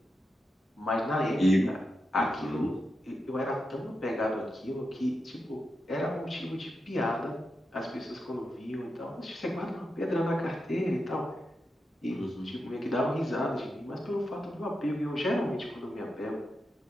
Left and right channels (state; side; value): normal; both; correlation 0.88